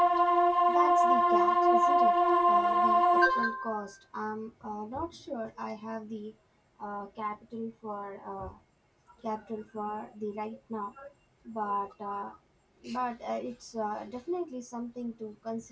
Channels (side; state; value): both; identical; correlation 1.00